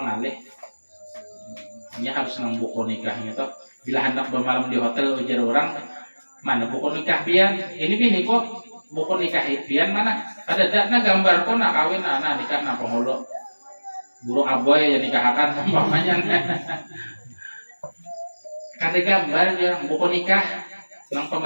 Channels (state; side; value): inverted; both; correlation -1.00